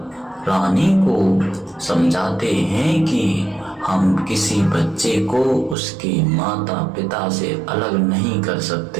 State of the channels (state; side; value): drops out; left; at 5.8 s